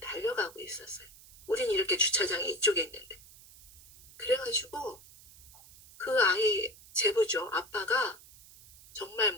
달려가고 있었어요. 우린 이렇게 주차장이 이쪽에 있는데. 그래가지고 그 아이 제부죠. 아빠가 정말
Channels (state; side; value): noise; right; hiss, 21 dB below the sound